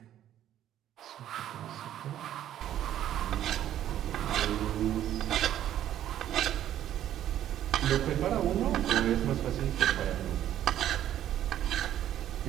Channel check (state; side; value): quieter; left; 11.6 dB